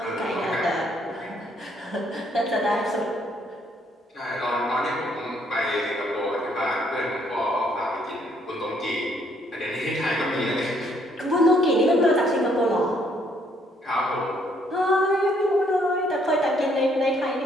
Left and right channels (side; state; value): both; normal; correlation 0.68